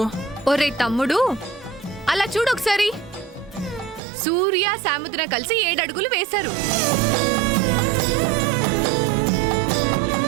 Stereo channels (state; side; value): drops out; left; at 4.0 s